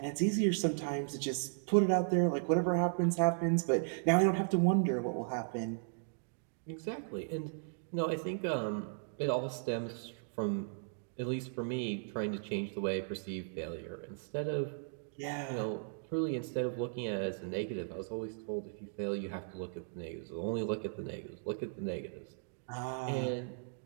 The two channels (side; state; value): left; silent; digital silence